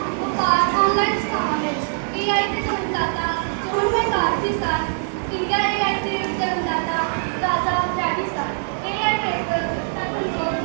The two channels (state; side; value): silent; left; 64 dB below the other